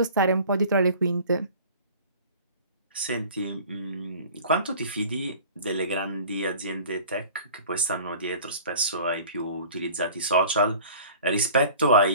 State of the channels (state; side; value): inverted; both; correlation -0.45